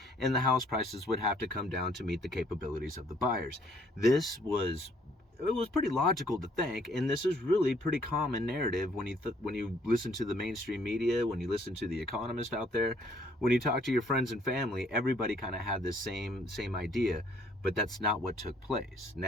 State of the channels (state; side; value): normal; both; correlation 0.63